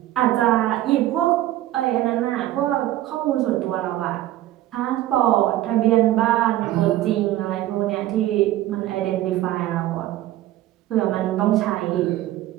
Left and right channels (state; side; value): quieter; left; 14.7 dB